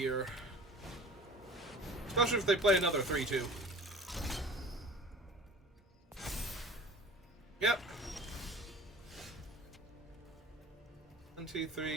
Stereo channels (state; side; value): normal; both; correlation 0.43